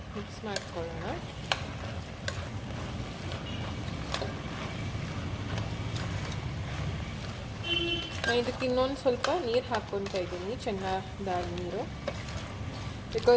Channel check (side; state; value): both; identical; correlation 1.00